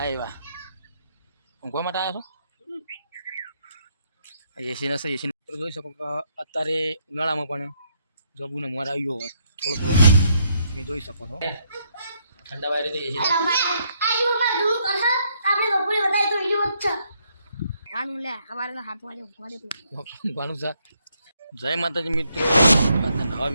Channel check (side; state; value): both; inverted; correlation -0.74